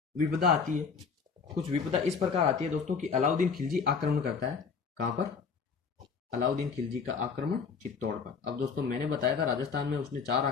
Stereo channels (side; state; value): right; quieter; 5.6 dB